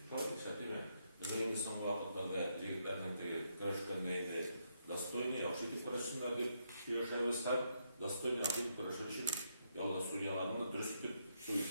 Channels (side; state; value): both; inverted; correlation -0.78